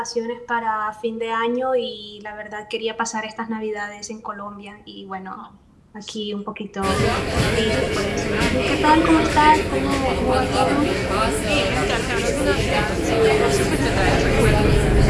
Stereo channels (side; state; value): both; identical; correlation 1.00